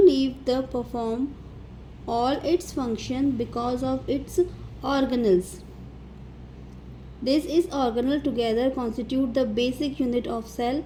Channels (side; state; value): both; identical; correlation 1.00